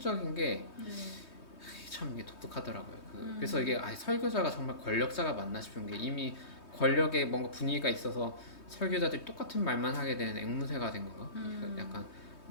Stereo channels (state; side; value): late; right; 3.2 ms